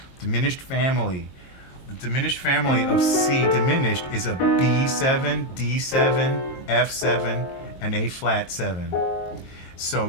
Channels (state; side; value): late; right; 22 ms